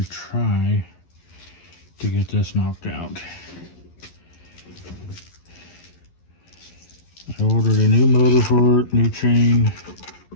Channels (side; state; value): right; late; 11 ms